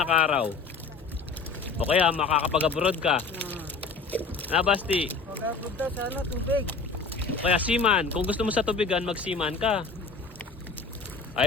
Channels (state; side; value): quieter; right; 4.4 dB